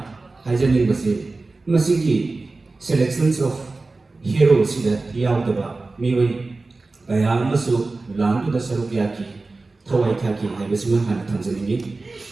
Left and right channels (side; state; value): left; quieter; 3.5 dB